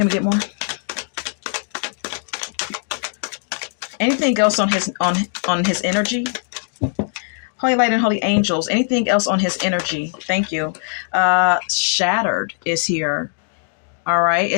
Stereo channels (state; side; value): silent; right; 65 dB below the other